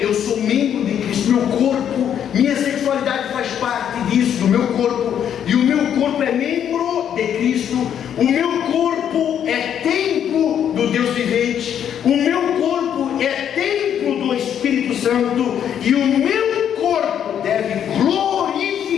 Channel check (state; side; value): quieter; right; 9.2 dB